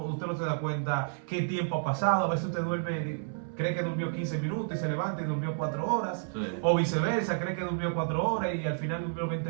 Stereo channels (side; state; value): left; silent; 57 dB below the other